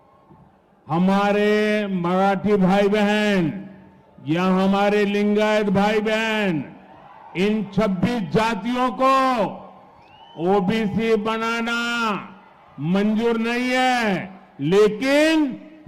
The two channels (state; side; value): identical; both; correlation 1.00